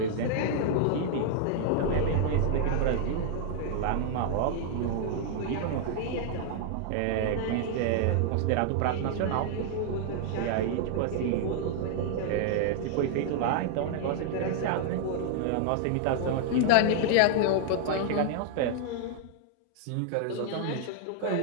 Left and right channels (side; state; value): both; different; correlation 0.00